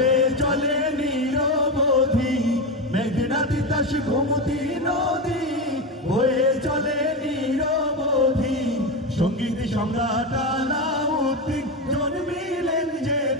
চলে নিরবধি, মেঘনা তিতাস গোমতী নদী বয়ে চলে নিরবধি। সঙ্গীত সম্রাট আলাউদ্দিন জন্মিলেন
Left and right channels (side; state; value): both; normal; correlation 0.16